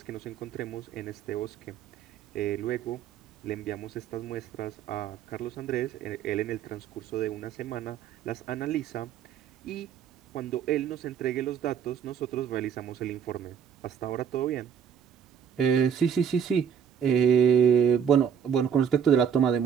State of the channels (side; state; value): left; quieter; 8.0 dB